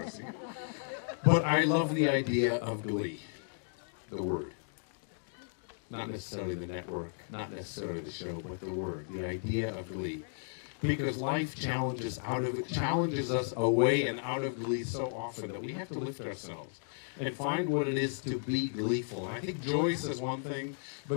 it. But I love the idea of Glee, the word. Not necessarily the network, not necessarily the show, but the word, the idea of Glee. Because life challenges us away and out of Glee so often that we have to lift ourselves and find what it is to be gleeful. And I think joy says one thing,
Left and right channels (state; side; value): silent; right; digital silence